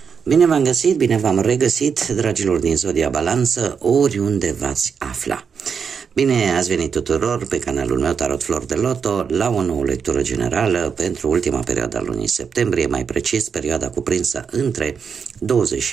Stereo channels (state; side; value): quieter; left; 6.4 dB